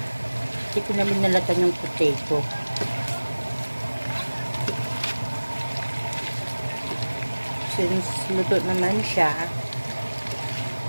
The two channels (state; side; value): inverted; both; correlation -1.00